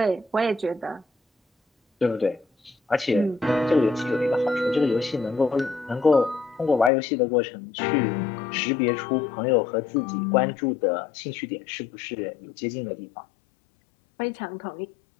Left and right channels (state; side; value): drops out; right; at 6.9 s